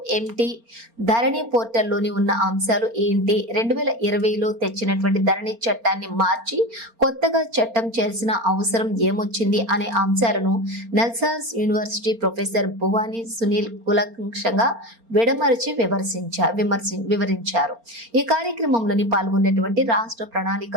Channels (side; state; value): left; late; 4.3 ms